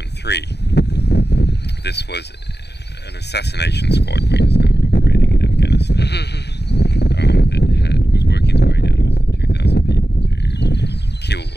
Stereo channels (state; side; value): late; right; 0.49 ms